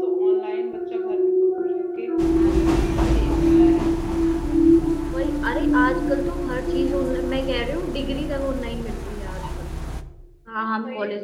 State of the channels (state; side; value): identical; both; correlation 1.00